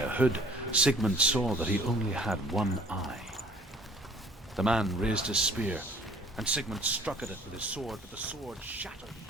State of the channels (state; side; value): normal; both; correlation 0.54